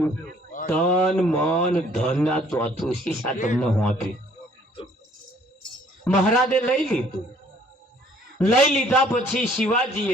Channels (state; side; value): normal; both; correlation 0.59